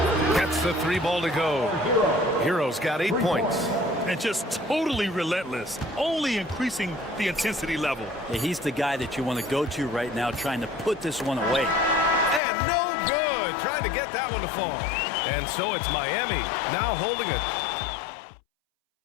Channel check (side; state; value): right; drops out; at 12.4 s